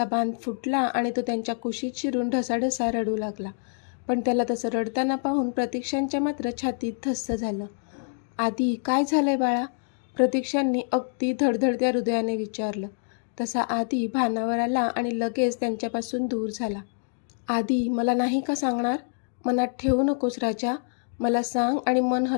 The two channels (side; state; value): right; silent; digital silence